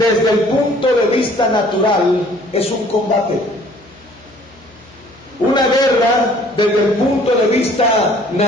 el punto de vista natural, es un combate. Una guerra, desde el punto de vista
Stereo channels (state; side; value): noise; left; hum, 27 dB below the sound